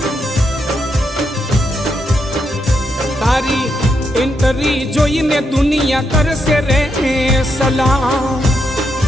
तारी इंटरी जोईने दुनिया करसे रे सलाम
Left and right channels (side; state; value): both; normal; correlation 0.81